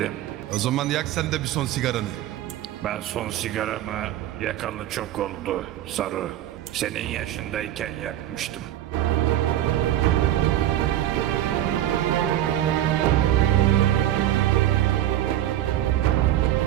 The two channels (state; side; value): quieter; left; 12.9 dB